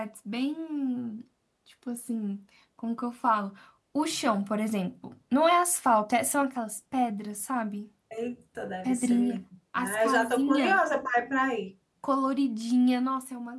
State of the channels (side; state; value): both; identical; correlation 1.00